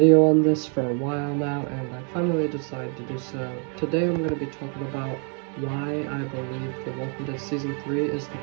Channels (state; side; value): quieter; left; 40.0 dB